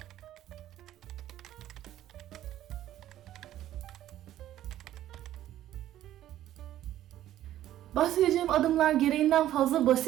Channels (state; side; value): quieter; left; 12.9 dB